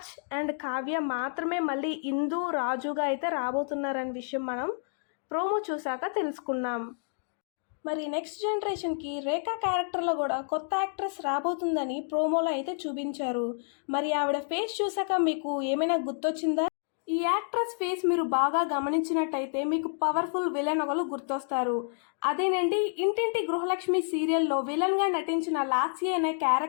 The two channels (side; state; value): right; silent; digital silence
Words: అండ్ కావ్య మాత్రమే మళ్ళీ ఇందు రాజుగా అయితే రాబోతున్నారనే విషయం మనం ప్రోమో చూశాక తెలుసుకున్నాం. మరి నెక్స్ట్ జనరేషన్కి రేఖా క్యారెక్టర్లో కూడా కొత్త యాక్ట్రెస్ రాబోతుందని ప్రోమోలో అయితే చూపించారు. మరి ఆవిడ ఫేస్ చూసాక మీకు ఏమైనా గుర్తొచ్చిందా? ఈ యాక్ట్రెస్ ఫేస్ మీరు బాగా గమనించినట్టయితే మీకు పవర్ఫుల్ విలన్ ఒకరు గుర్తొస్తారు. అదేనండి, ఇంటింటి గృహలక్ష్మి సీరియల్లో విలన్గా నటించిన లాస్య అనే